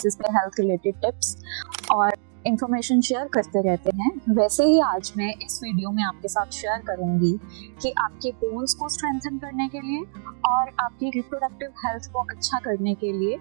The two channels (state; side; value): silent; left; digital silence